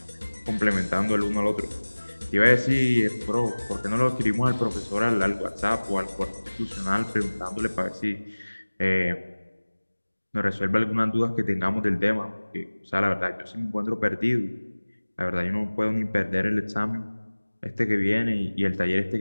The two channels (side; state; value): both; inverted; correlation -1.00